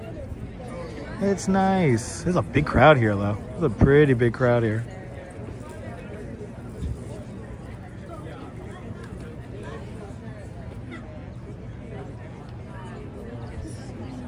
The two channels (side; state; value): both; identical; correlation 1.00